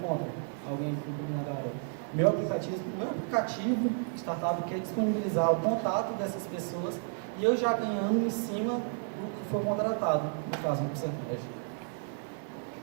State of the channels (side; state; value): left; silent; 56 dB below the other